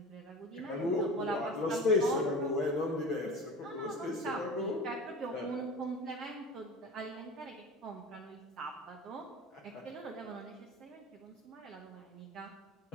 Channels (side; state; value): both; normal; correlation 0.34